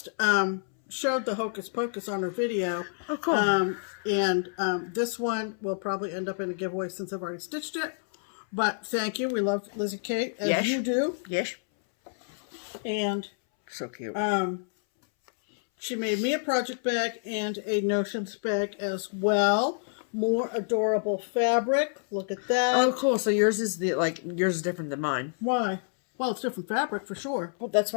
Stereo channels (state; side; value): silent; right; 59 dB below the other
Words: showed the Hocus Pocus on her video. Oh, cool. And this one will probably end up in a giveaway since I've already stitched it. But thank you. We love Lizzie Kate, as you do. Yes. And so cute. She made me a project bag and a Notions bag as well. More adorable fabric. Look at that. Oh, cool. So yours is yours is different than mine. Why? Well, it's different fabric for sure. Well, that's